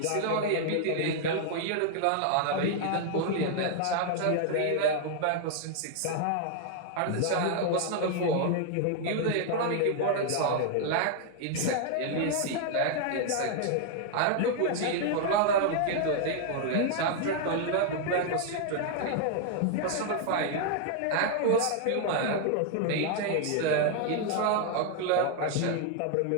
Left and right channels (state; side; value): different; both; correlation 0.00